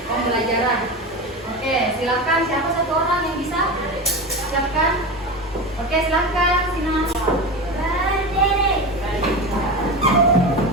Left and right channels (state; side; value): normal; both; correlation 0.24